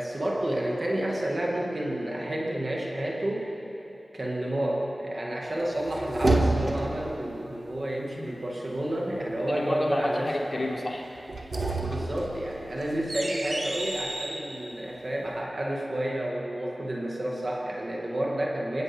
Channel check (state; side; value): normal; both; correlation 0.96